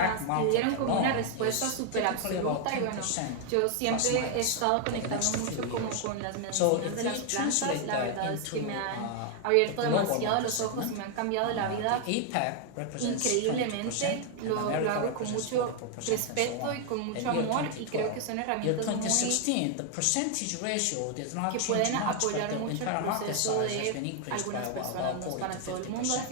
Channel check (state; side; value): different; both; correlation 0.00